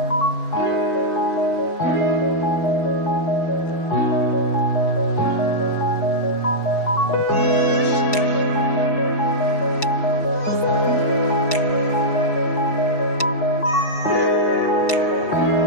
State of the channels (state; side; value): late; right; 4.6 ms